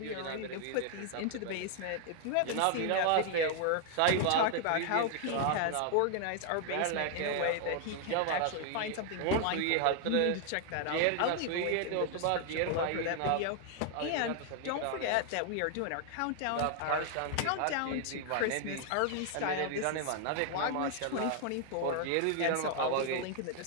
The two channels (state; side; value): different; both; correlation 0.00